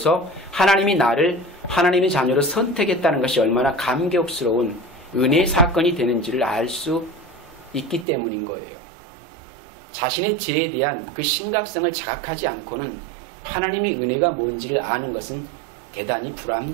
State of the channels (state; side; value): drops out; left; at 8.1 s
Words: 하나님이 나를 하나님의 자녀로 선택했다는 것이 얼마나 감격스러운 은혜의 사건이 되는지를 알 수 있기 때문인 거예요. 자신의 죄에 대한 그 심각성을 자각하지 않고는 하나님의 은혜가 뭔지를 아는 것은 대단히